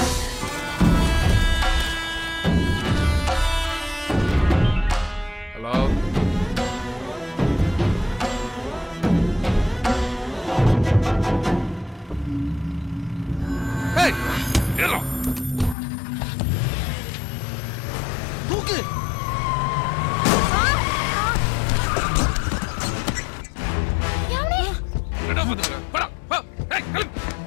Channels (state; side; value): drops out; right; at 15.8 s